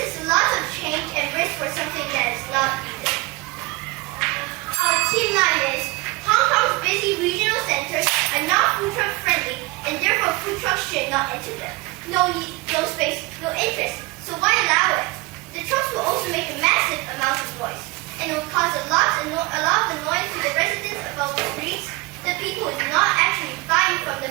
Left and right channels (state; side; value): quieter; left; 25.2 dB